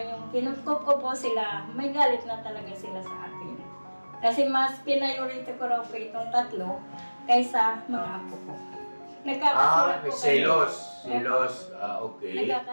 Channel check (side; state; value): both; inverted; correlation -1.00